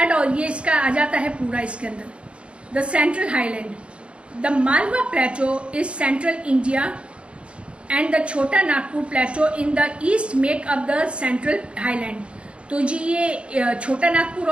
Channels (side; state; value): left; late; 0.059 ms